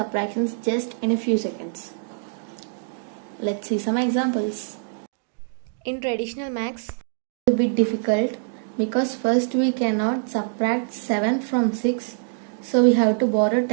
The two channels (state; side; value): silent; left; digital silence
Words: just in a few seconds. Let's see some examples. In traditional maths, it's a bit difficult because first we cannot subtract 7 from 6, so we have to borrow